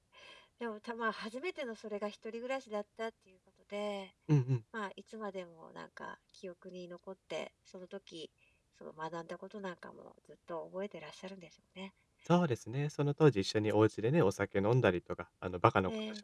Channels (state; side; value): identical; both; correlation 1.00